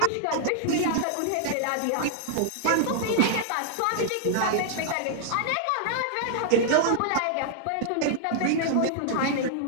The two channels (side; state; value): both; different; correlation -0.01